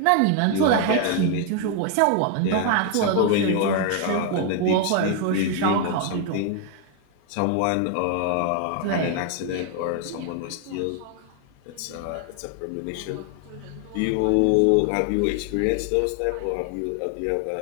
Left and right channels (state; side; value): different; both; correlation 0.01